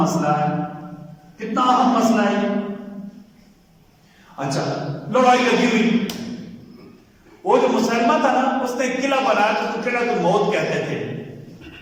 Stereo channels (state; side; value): identical; both; correlation 1.00